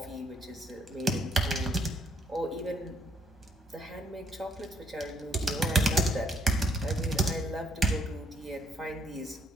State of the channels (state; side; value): normal; both; correlation 0.68